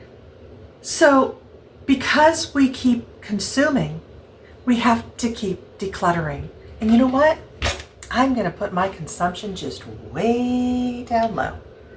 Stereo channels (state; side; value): identical; both; correlation 1.00